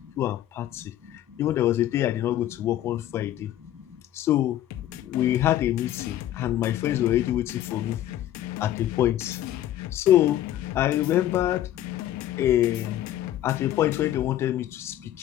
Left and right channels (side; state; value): right; quieter; 12.7 dB